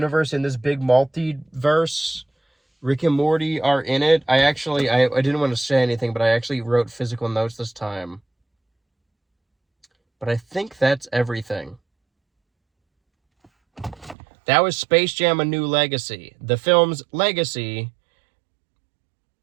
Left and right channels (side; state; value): left; drops out; at 14.2 s